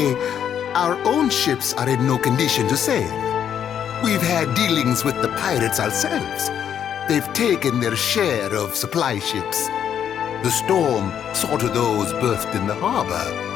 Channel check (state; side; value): quieter; right; 9.0 dB